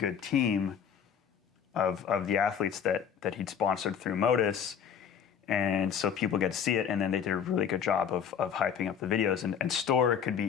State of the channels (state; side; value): quieter; right; 7.7 dB